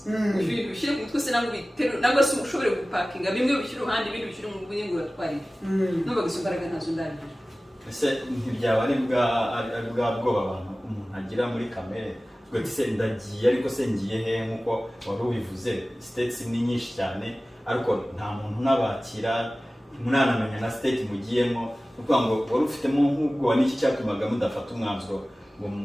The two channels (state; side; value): normal; both; correlation 0.97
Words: ibintu bishyire ku mutwe se nangwa biterure nangwa se ushobore gupakinga bimwe bishyira uruhande ibindi bishyira mu bwenge uratwarira numvaga izo mbaraga ntazo ndagira ese ntibyaba ari bwa bwoba abantu umuntu agira muri kamere ubwo se ndagiye ariko se ngiye he nk'uko wari ubivuze states ni nyinshi cyane ariko nta muntu nabakira munanamenya na state mugiyemo kuko ngo wari ufitemo nk'ubwo n'iki cyatumaga mudafata umwanzuro ngo